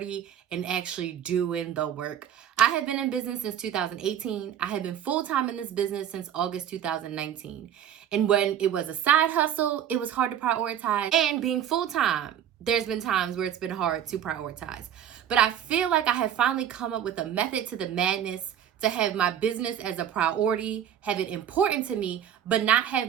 and actually doing the work. I have been in business since 2018. I have been full-time in this business since August 2019. And when it was a side hustle, it was hard to prioritize. And being full-time, there's been times where it's been hard to prioritize. But I feel like I have finally come up with a method to the madness to have my business as a priority, have it important to me, but not have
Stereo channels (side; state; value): left; quieter; 9.8 dB